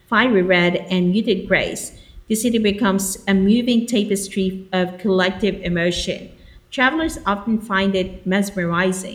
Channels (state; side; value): identical; both; correlation 1.00